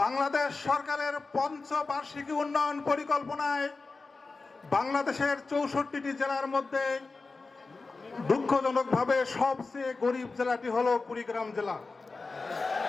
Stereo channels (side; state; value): right; quieter; 3.9 dB